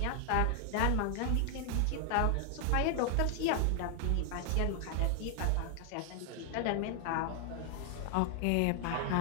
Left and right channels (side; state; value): both; different; correlation 0.00